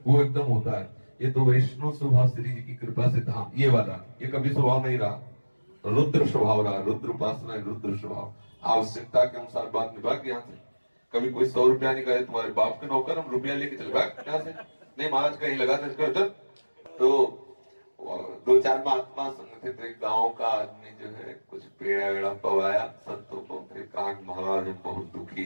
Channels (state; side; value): inverted; both; correlation -1.00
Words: वो एकदम होता है। ये तो वैष्णव स्वभाव श्री जी की कृपा से था। ये वाला ये कभी स्वभाव नहीं रहा, रुद्र स्वभाव रहा। रुद्र उपासना, रुद्र स्वभाव। आवश्यकता के अनुसार बात निभा के यहाँ से कभी कोई 100 रुपया नहीं कहे तुम्हारे बाप के नौकर, हम रुपया लेके चले भाग यहाँ से। नहीं महाराज कहीं लगा दे। तो 2-4 महात्मा संग थे, तो एक गांव का आदमी जो है कुछ पेड़ा वेड़ा पवाया संतों को, फिर कहा महाराज हम बहुत दुखी